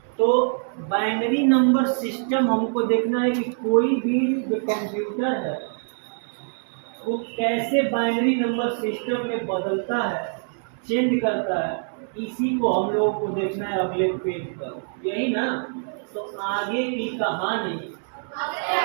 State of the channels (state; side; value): silent; left; 61 dB below the other